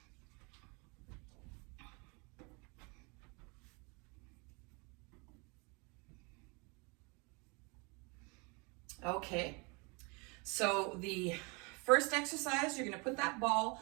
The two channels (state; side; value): quieter; left; 30.1 dB